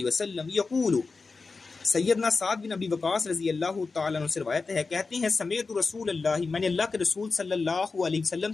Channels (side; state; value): right; quieter; 4.2 dB